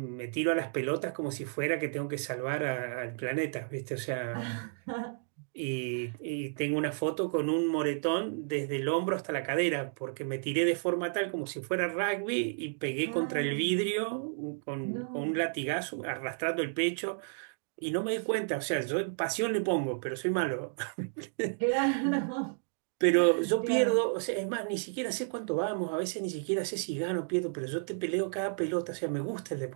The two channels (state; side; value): silent; left; digital silence